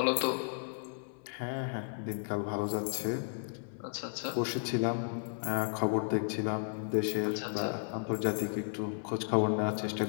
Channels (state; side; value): silent; right; 55 dB below the other